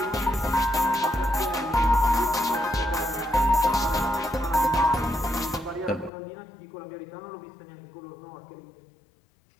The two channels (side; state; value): right; drops out; at 6.1 s